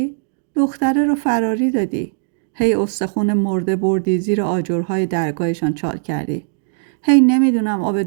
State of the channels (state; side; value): silent; left; digital silence